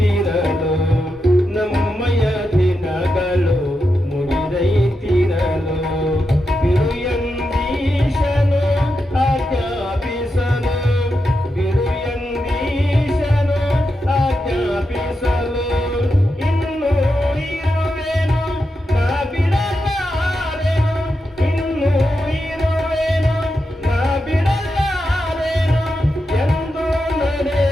ನಮ್ಮಯ ದಿನಗಳು ಮುಗಿದೈತಿರಲು ಬಿರುಯಂದೀಶನು ಆಜ್ಞಾಪಿಸಲು ಬಿರುಯಂದೀಶನು ಆಜ್ಞಾಪಿಸಲು ಇನ್ನೂ ಇರುವೆನು ನಾ ಬಿಡಲಾರೆನು ಇನ್ನೂ ಇರುವೆನು ನಾ ಬಿಡಲಾರೆನು ಎಂದು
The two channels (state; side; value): normal; both; correlation 0.87